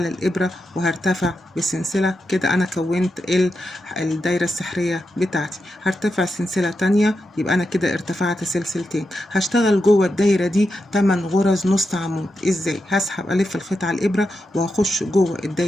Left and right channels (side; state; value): both; normal; correlation 0.87